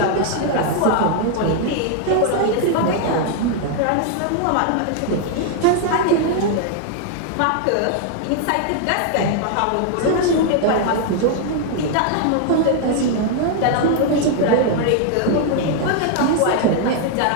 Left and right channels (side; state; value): both; different; correlation 0.00